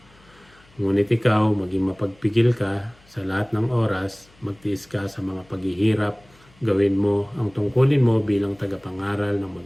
Ngunit ikaw, maging mapagpigil ka sa lahat ng oras, magtiis ka sa mga paghihirap, gawin mo ang tungkulin mo bilang tagapangaral ng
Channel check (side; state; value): left; noise; hum, 29 dB below the sound